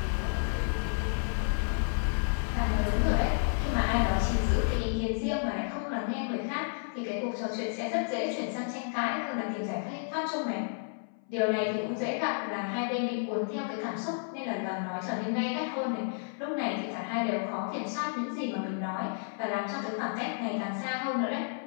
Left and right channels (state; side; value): silent; right; 57 dB below the other